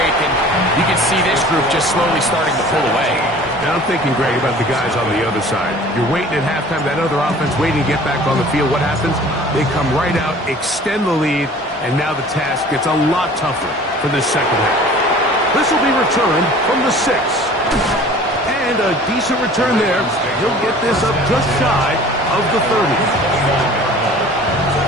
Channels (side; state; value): both; normal; correlation 0.46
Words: and you can see this group just slowly starting to pull away. Now I'm thinking, Greg, about the guys on the other side. You're waiting at halftime, that other offense waiting to get back on the field. What happens? They come right out, extend the lead, and now the task gets a lot tougher for this second half. This will be returned from the 6. And a decent return there. He'll get this up just shy of the 30.